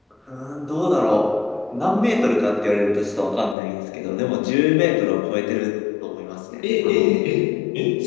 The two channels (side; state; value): right; drops out; at 3.6 s